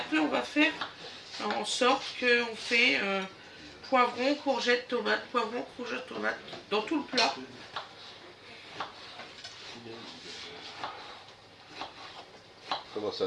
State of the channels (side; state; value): both; identical; correlation 1.00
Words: on va faire en sorte qu'on fait poivron, courgette, tomate, poivron, courgette, tomate dans tout le plat. Comment